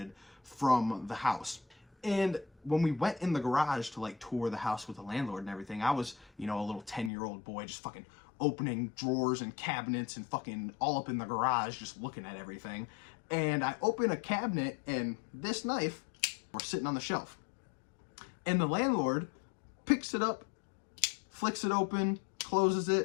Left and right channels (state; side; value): drops out; right; at 7.1 s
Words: from the house. And when we went in the garage to like tour the house with the landlord and everything, I was, you know, a little 10-year-old boy just fucking opening drawers and cabinets and fucking all up in the garage just looking at everything. And I open a cabinet and this knife was sitting on the shelf. And the landlord picks it up, flicks it open, closes